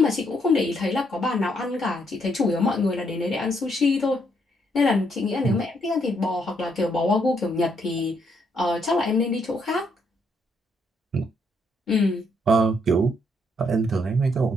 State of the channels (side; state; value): both; normal; correlation 0.73